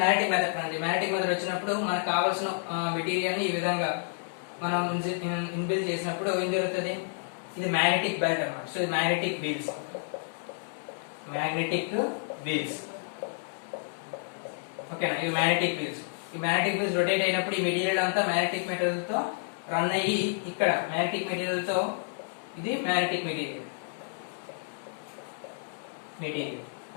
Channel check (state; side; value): silent; right; 58 dB below the other